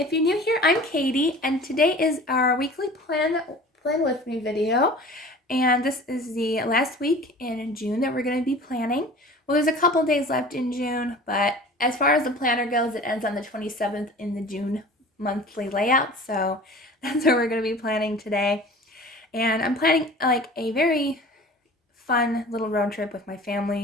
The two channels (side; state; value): both; normal; correlation 0.42